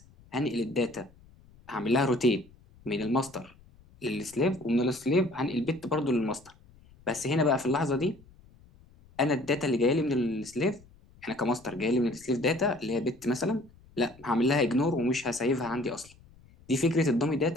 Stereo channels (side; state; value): left; noise; rumble, 26 dB below the sound